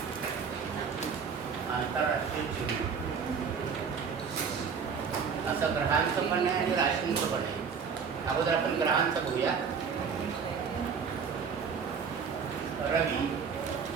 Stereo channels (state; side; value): quieter; left; 6.2 dB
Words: आंतरराष्ट्रीय चिन्ह असं ग्रहांचं पण आहे आणि राशींचं पण आहे. अगोदर आपण ग्रहांचं बघूया. रवी,